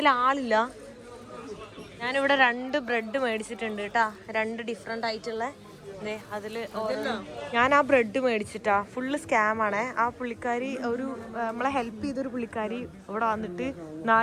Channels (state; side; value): identical; both; correlation 1.00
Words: ആളില്ല. ഞാനിവിടെ 2 ബ്രെഡ് മേടിച്ചിട്ടുണ്ട് കേട്ടാ, 2 ഡിഫറെൻ്റ് ആയിട്ടുള്ള. അതിൽ ഞാൻ ആ ബ്രെഡ് മേടിച്ചിട്ടാ. ഫുള്ള് സ്കാമാണ്. ആ പുള്ളിക്കാരി നമ്മളെ ഹെൽപ്പ് ചെയ്തൊരു പുള്ളിക്കാരി ഇവിടെ വന്നിട്ട്